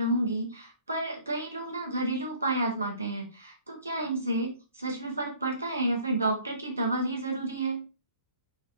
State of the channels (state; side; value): inverted; both; correlation -0.54